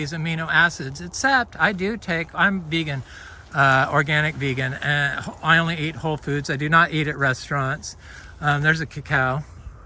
amino acids, except I'm vegan, organic vegan, and I only eat whole foods. I do not eat at restaurants. There's a cacao.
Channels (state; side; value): identical; both; correlation 1.00